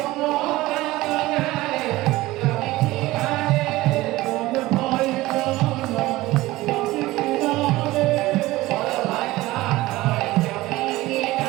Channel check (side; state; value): left; quieter; 18.3 dB